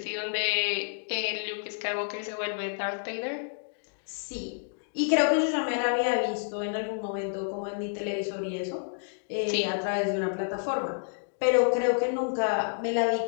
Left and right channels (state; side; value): silent; right; digital silence